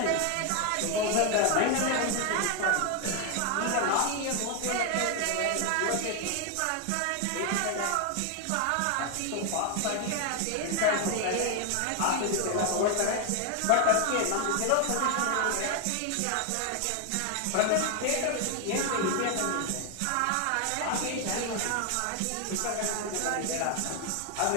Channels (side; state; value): both; different; correlation 0.01